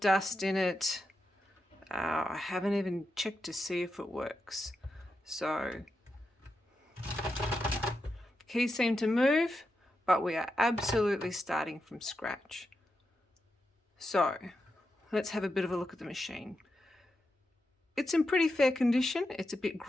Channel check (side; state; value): both; normal; correlation 0.87